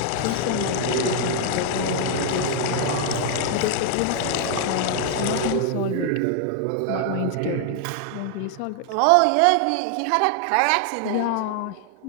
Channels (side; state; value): both; different; correlation 0.00